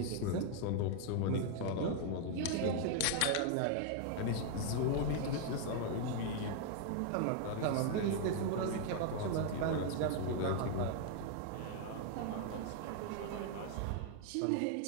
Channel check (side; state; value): both; different; correlation 0.00